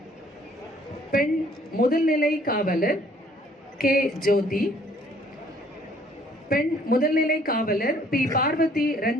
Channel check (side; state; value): both; normal; correlation 0.60